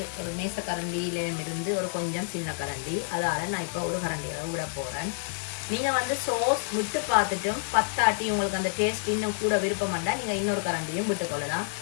ஒரு மேச கரண்டியிலிருந்து ஒரு கொஞ்சம் சின்ன கரண்டி, அதால் நான் இப்போ ஒரு கரண்டி அளவு விட போகிறேன். நீங்கள் வந்து சோஸ் விட்டு பார்த்துட்டும் பத்தாட்டி உங்களுக்கு அந்த டேஸ்ட் இன்னும் கூட விருப்பம் பண்ணால் நீங்கள் இன்னொரு கரண்டியும் விட்டுக்கொள்ளலாம்.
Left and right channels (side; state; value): right; silent; 55 dB below the other